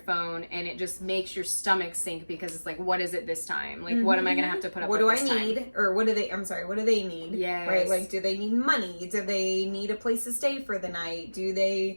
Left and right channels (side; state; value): both; inverted; correlation -1.00